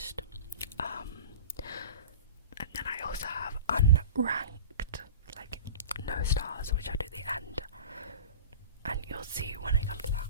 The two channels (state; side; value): inverted; both; correlation -0.36